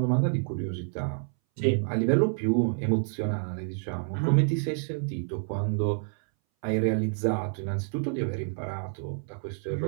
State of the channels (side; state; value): left; silent; 59 dB below the other